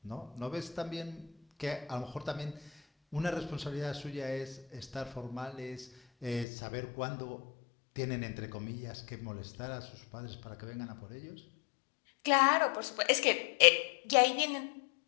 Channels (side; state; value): right; drops out; at 6.5 s